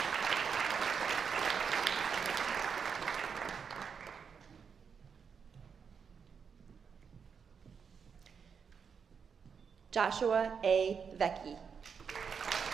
Joshua A. Vecchi.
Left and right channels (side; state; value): left; quieter; 6.4 dB